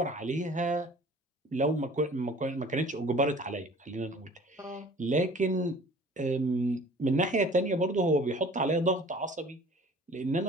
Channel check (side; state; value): both; normal; correlation 0.48